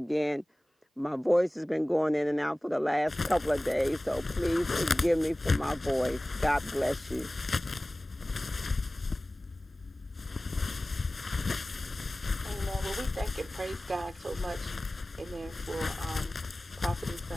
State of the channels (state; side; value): normal; both; correlation 0.97